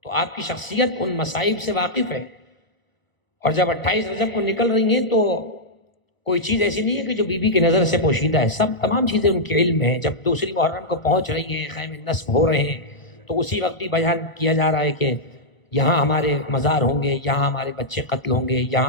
تو آپ کی شخصیت ان مصائب سے واقف ہے۔ اور جب 28 رجب کو نکل رہی ہیں تو کوئی چیز ایسی نہیں ہے کہ جو بی بی کی نظر سے پوشیدہ ہے، تمام چیزیں ان کے علم میں ہیں۔ جب دوسری محرم کو پہنچ رہی ہیں، خیمے نصب ہو رہے ہیں، تو اسی وقت بھی بیان کیا جا رہا ہے کہ یہاں ہمارے مزار ہوں گے، یہاں ہمارے بچے قتل ہوں گے،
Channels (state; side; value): late; right; 1.1 ms